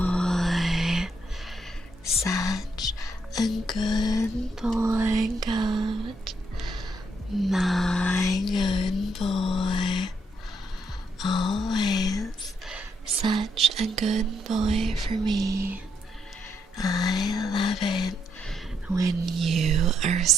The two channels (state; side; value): normal; both; correlation 0.76